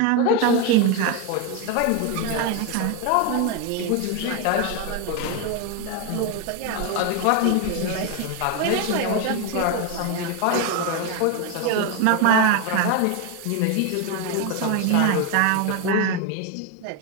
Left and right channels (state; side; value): different; both; correlation 0.02